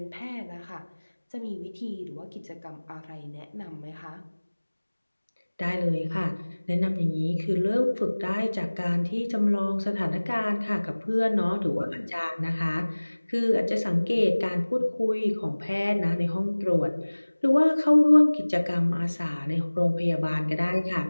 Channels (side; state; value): both; inverted; correlation -1.00